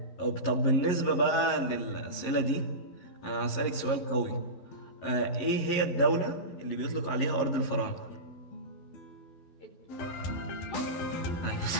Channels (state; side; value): late; right; 12 ms